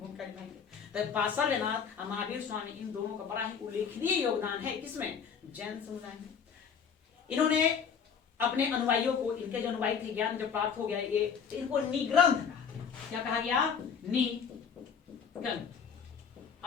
निभाएंगे। तो पार्श्वनाथ और महावीर स्वामी इन दोनों का बड़ा ही उल्लेखनीय योगदान है, किसमें, जैन समुदाय में। इन्होंने अपने अनुयायियों को, इनके जो अनुयायी थे, ज्ञान जब प्राप्त हो गया, ये इनको निग्रंथ कहा। क्या कहा गया, निग्रंथ।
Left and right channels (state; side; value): quieter; right; 6.8 dB